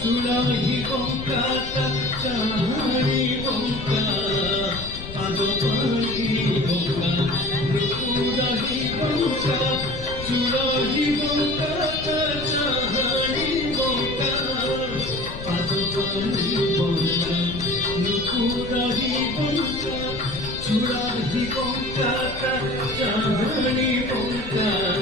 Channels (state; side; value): noise; left; rumble, 11 dB below the sound